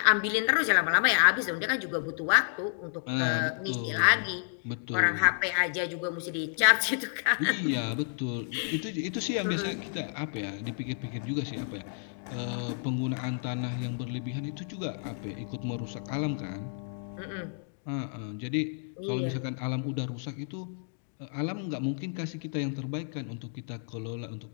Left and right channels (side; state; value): right; silent; digital silence